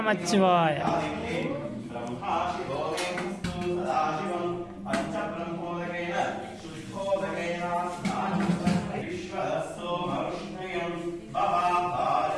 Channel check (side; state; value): both; identical; correlation 1.00